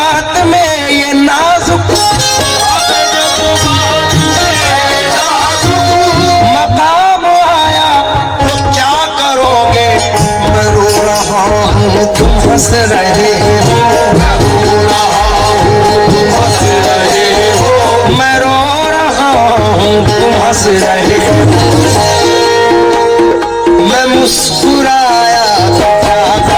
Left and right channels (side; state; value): both; identical; correlation 1.00